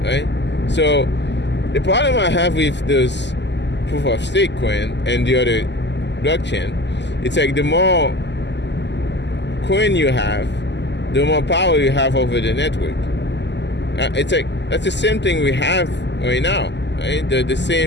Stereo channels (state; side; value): late; right; 0.51 ms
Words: right? So the problem I have with those proof of stake coin and the other blockchain, it's like the more coin you have, the more power you have over the network. It's like that's the same thing we have right now, right? The